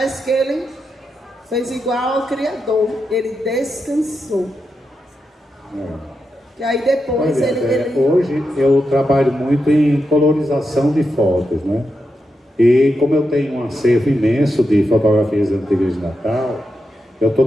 que ele fez igual ao Criador. Ele descansou. E aí depois Hoje eu trabalho muito em colorização de fotos, né? E como eu tenho um acervo imenso de fotografias antigas de Natal, eu estou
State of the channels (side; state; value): both; normal; correlation 0.87